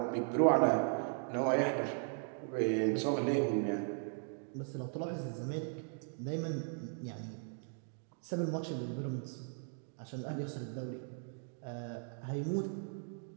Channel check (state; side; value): silent; left; 53 dB below the other